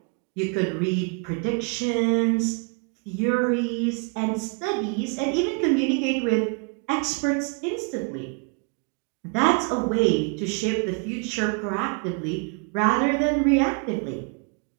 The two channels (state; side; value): quieter; left; 35.1 dB